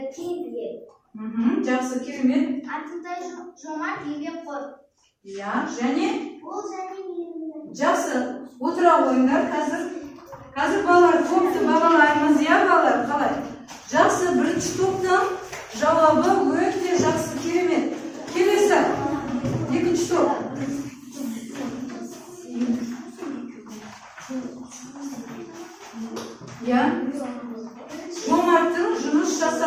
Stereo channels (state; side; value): identical; both; correlation 1.00